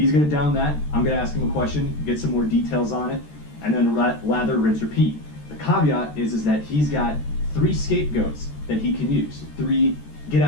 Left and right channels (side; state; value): right; late; 13 ms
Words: going to down that. I'm going to ask him a question, get some more details on it, and then lather, rinse, repeat. The caveat is that he's got 3 scapegoats that he can use. 3 get